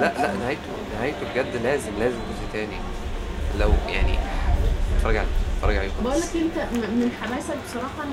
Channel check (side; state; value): both; identical; correlation 1.00